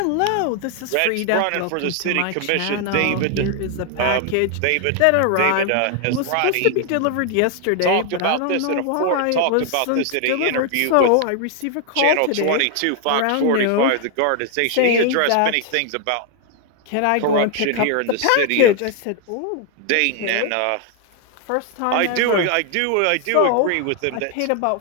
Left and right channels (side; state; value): both; different; correlation 0.00